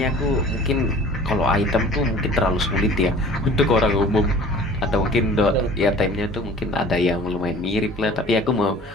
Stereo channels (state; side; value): normal; both; correlation 0.46